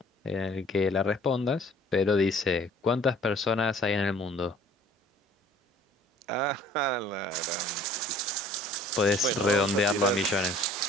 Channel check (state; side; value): normal; both; correlation 0.53